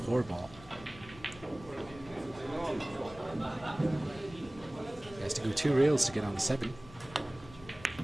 He has to go 2 rails to get on the 7,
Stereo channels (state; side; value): noise; left; rumble, 19 dB below the sound